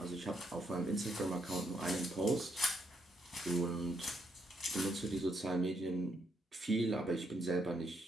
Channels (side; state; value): both; normal; correlation 0.76